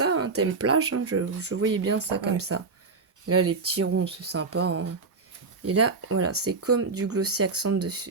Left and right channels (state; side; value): quieter; left; 4.3 dB